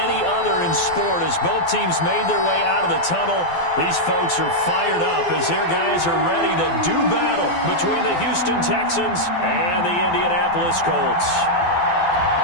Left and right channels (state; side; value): late; right; 12 ms